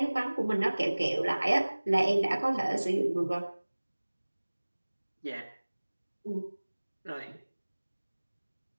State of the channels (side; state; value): both; inverted; correlation -1.00